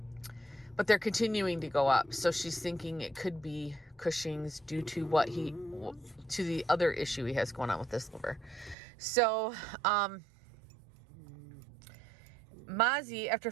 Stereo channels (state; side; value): drops out; left; at 8.8 s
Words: But they're continuing to go up. So she's thinking it could be Cushing's due to to the other issue he has going on with his liver. So, Mozzie, after